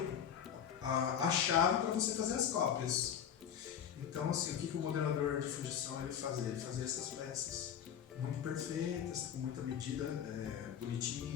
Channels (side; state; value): right; quieter; 8.7 dB